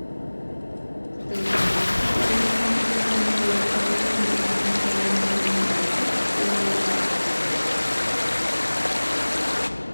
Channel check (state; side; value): inverted; both; correlation -1.00